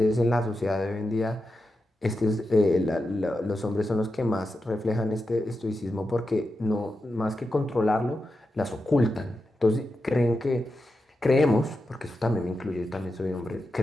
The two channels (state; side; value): normal; both; correlation 0.89